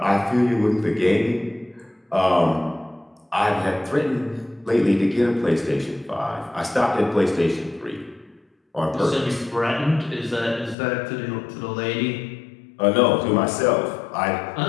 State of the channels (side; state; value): right; drops out; at 10.8 s